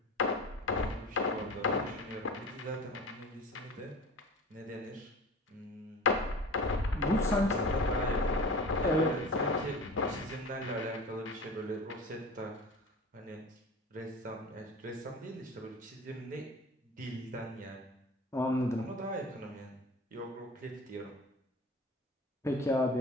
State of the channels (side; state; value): both; normal; correlation 0.37